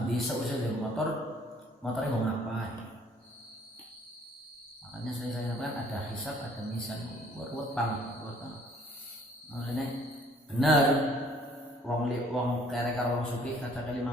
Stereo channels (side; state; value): both; normal; correlation 0.59